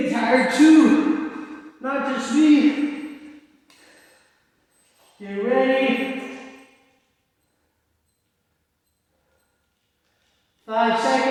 tired too. Not just me. Get ready. 5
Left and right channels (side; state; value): both; identical; correlation 1.00